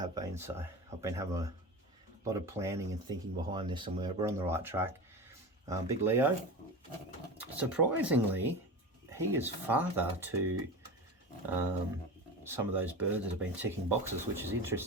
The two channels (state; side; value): normal; both; correlation 0.28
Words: been. So I've been having a lot of planning and thinking behind this, and we're on the right track. Big Leo, surprisingly, he is father to some of those birds that have been ticking boxes, which is